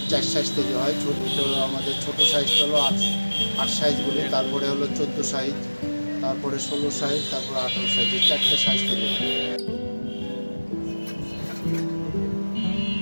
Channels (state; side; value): inverted; both; correlation -1.00